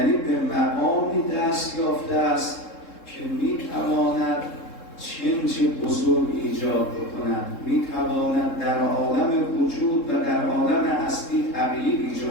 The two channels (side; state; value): right; late; 3.7 ms